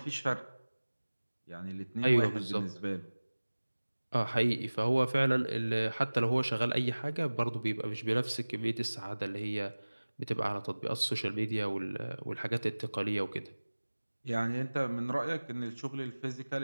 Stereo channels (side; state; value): both; inverted; correlation -1.00